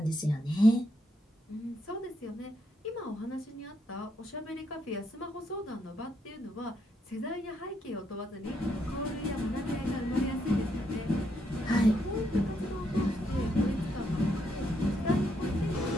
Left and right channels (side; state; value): both; normal; correlation 0.77